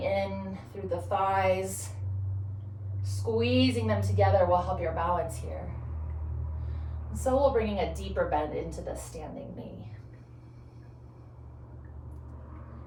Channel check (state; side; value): identical; both; correlation 1.00